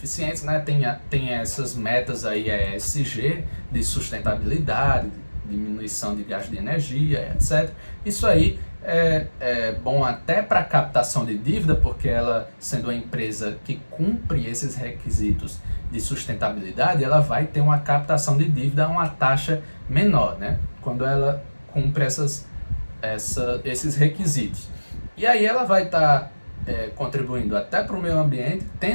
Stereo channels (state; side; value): inverted; both; correlation -1.00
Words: né? Tem essas metas aí, ESG, de sustentabilidade, diminuição de gasto de energia, etc. Isso aí é bom até para captação de dívida, porque ela, sendo uma empresa que cumpre esses requisitos de sustentabilidade, ela vai ter uma captação de dívida a uma taxa menor, né? Quando ela cumpre esses requisitos. E aí ela vai estar contribuindo até para o meio ambiente,